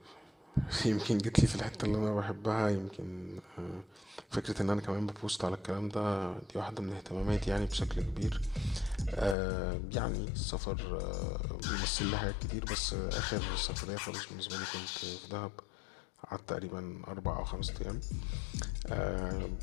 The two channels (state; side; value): drops out; right; at 9.3 s